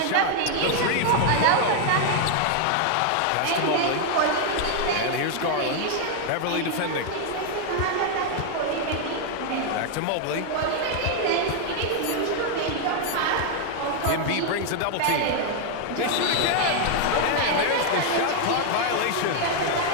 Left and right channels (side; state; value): both; different; correlation 0.00